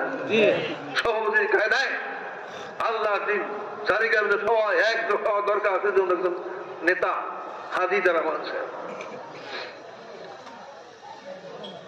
সভাপতি কায়দায় আল্লাহর দিন চারিকার সবাই এক হওয়া দরকার আছে, জন্য একজন নেতা হাদি তারা মানছে।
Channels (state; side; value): identical; both; correlation 1.00